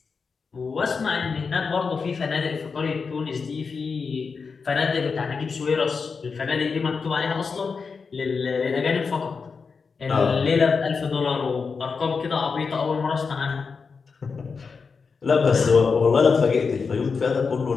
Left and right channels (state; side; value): quieter; right; 5.1 dB